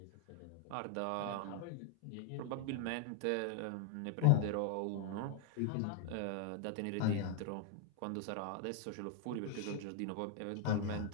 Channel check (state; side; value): different; both; correlation 0.00